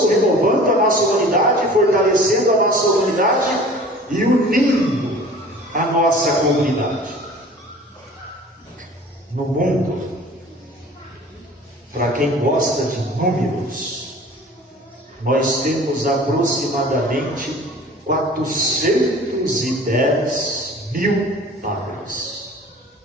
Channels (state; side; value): normal; both; correlation 0.45